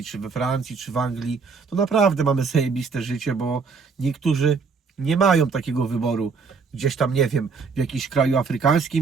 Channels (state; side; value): quieter; left; 5.0 dB